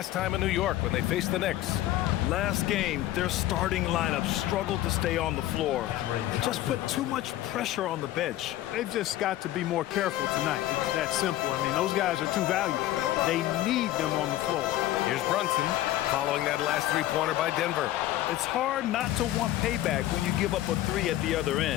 time in New York when they faced the Knicks. Last game, their starting lineup struggled to stay on the floor. Just put too much pressure on the bench. They've just got to be more careful tonight. It's that simple. I mean, those guys are too valuable. They need them on the floor. Here's Brunson following that last 3-pointer by Denver. It's hard not to want payback when you give up a 3 at the other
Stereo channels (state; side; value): quieter; right; 14.5 dB